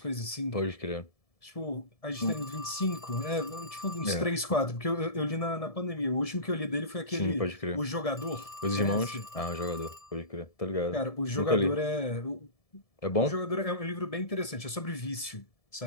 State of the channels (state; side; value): late; right; 1.7 ms